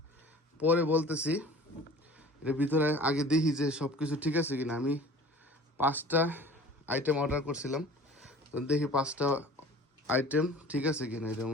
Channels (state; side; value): normal; both; correlation 0.44